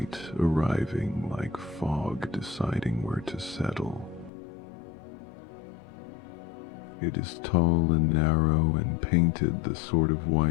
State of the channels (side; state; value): right; drops out; at 4.3 s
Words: arriving like fog deciding where to settle. It is tall and narrow and painted the sort of